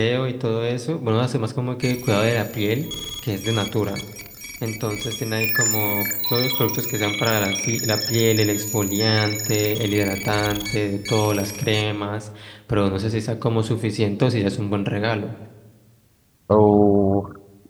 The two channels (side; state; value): both; identical; correlation 1.00